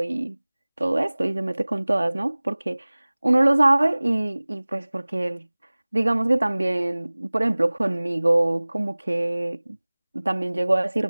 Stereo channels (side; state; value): both; inverted; correlation -1.00